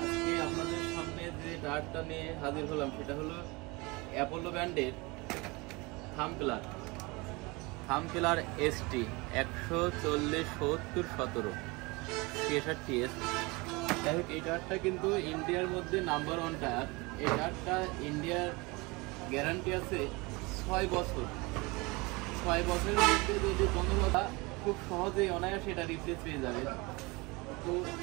আজকে আপনাদের সামনে যে টায়ারটা নিয়ে হাজির হলাম সেটা হলো অ্যাপোলো ব্র্যান্ডের থামপিলার এসটি 140/70/17 63S। যাই হোক, এই টায়ারটা কিন্তু ইন্ডিয়ার মধ্যে নাম্বার 1 টায়ার। এই টায়ারটা ইন্ডিয়ার গ্যারান্টি আছে 6 বছর। 6 বছরের মধ্যে যদি কোনো কথা খুব সহজেই অনায়াসে এটা রিপ্লেস পেয়ে যাবে। তো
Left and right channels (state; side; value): quieter; left; 25.3 dB